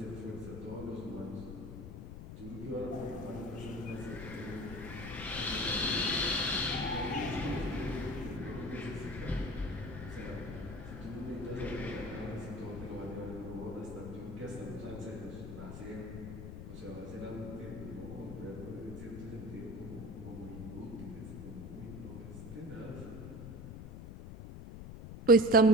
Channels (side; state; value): left; noise; rumble, 10 dB below the sound